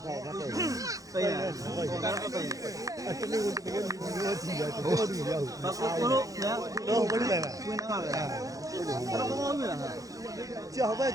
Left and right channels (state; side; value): late; left; 0.17 ms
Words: ခိုင်တာတဲ့ ပေးရဟိုကတော့ပေး အတလေးကိုတကယ်မျိုးကြည့်ရတယ်ဘောတူရအောင် ဘာကိုလို့နော် တော့မလို့လဲ ဝင်တော့ပါပဲဘာလို့မလဲဟာ ကြောက်ပဲ